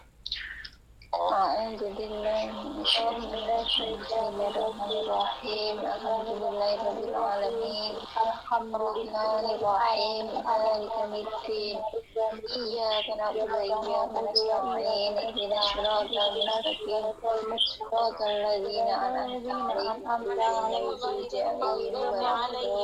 A'udzubillahi Bismillahirrahmanirrahim. Alhamdulillahirabbil alamin. Arrahmanirrahim. Maliki yaumiddin. Iyyaka na'budu wa iyyaka nasta'in. Ihdinas siratal mustaqim. Siratal ladzina an'amta 'alaihim ghairil maghdubi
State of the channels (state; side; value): identical; both; correlation 1.00